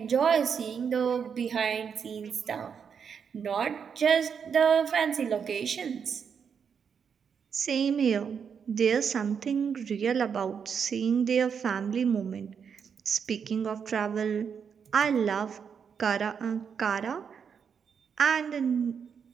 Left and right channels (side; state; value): left; quieter; 6.9 dB